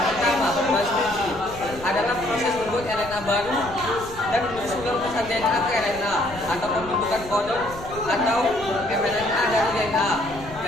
pertama, transkripsi adalah proses membuat RNA baru dan mensusun pesan DNA ke RNA atau pembentukan kodon atau mRNA dari DNA.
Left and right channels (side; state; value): left; noise; rumble, 15 dB below the sound